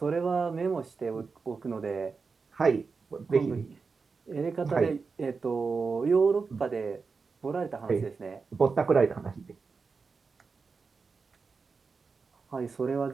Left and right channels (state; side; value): quieter; left; 4.8 dB